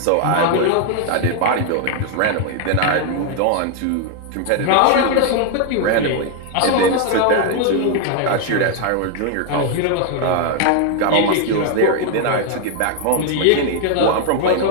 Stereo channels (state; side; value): different; both; correlation 0.00